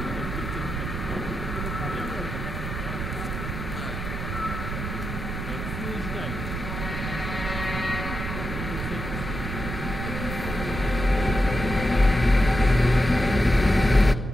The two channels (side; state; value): right; noise; rumble, 5 dB below the sound